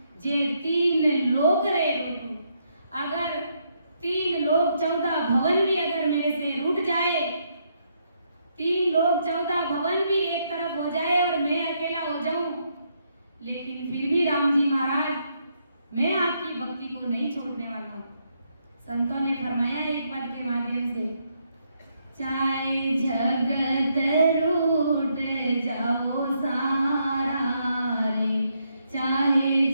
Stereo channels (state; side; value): inverted; both; correlation -0.76